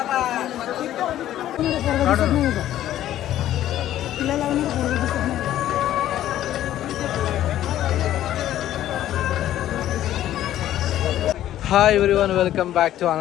Hi everyone, welcome back to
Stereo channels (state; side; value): quieter; right; 12.7 dB